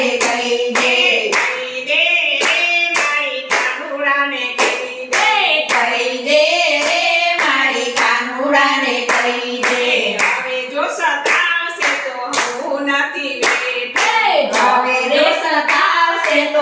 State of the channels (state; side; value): identical; both; correlation 1.00